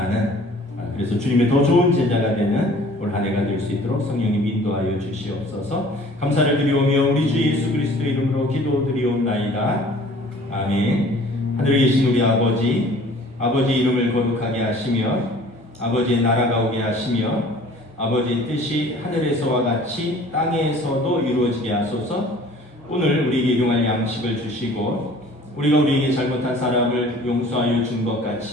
그래서 주님의 더 좋은 제자가 되는 올 한 해가 될 수 있도록 성령님 인도하여 주시옵소서. 감사를 드리오며 우리 주 예수 그리스도의 이름으로 기도드리옵나이다. 아멘. 하늘에 계신 우리 아버지 이름을 거룩하게 하시며 아버지의 나라가 오게 하시며 아버지의 뜻이 하늘에서와 같이 땅에서도 이루어지게 하소서. 오늘 우리에게 일용할 양식을 주시고 우리가 우리에게 잘못한 사람을 용서하여 준 것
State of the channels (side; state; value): both; normal; correlation 0.50